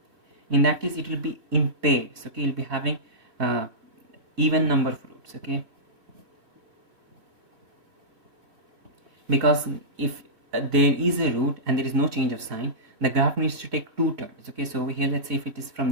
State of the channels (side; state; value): left; late; 3.3 ms